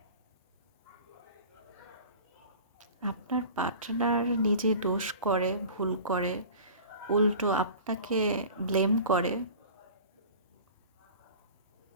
আপনার পার্টনার নিজে দোষ করে, ভুল করে, উল্টো আপনাকে ব্লেম করে।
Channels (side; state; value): both; inverted; correlation -0.40